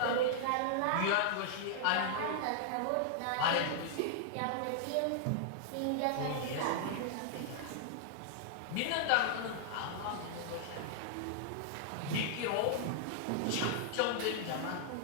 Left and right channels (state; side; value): different; both; correlation -0.01